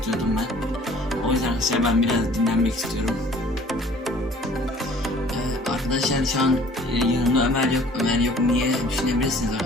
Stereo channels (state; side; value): normal; both; correlation 0.52